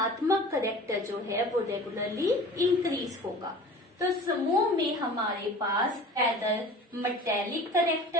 करेक्टर जो है वो रेगुलरली इंक्रीज होगा। तो समूह में हमारे पास ऐदर मेटेलिक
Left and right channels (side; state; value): both; normal; correlation 0.41